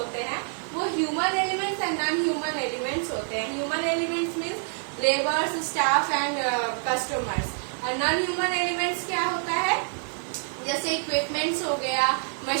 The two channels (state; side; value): silent; left; 58 dB below the other